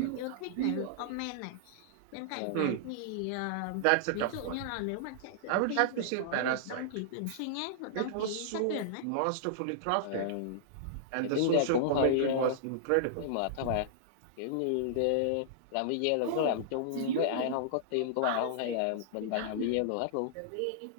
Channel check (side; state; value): both; different; correlation -0.02